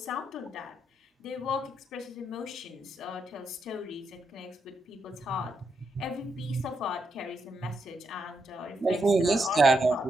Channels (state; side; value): normal; both; correlation 0.81